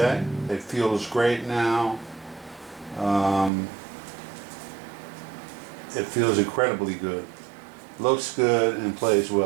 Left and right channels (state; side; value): drops out; left; at 3.5 s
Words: it feels great now. It feels incredibly good. Looks good and plays